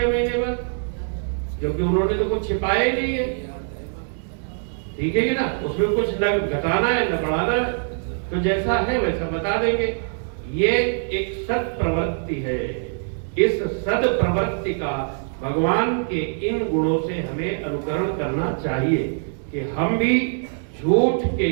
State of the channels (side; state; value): left; silent; digital silence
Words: महीने बाद, क्योंकि उन्होंने तो कुछ छिपाया ही नहीं है। ठीक है कि ना, उसमें कुछ न घटाना है न बढ़ाना है, तो जैसा है वैसा बता देंगे। ये एक सद प्रवृत्ति है। इस सद प्रवृत्ति का भगवान के इन गुणों से हमें अनुकरण करना चाहिए कि हम भी झूठ के,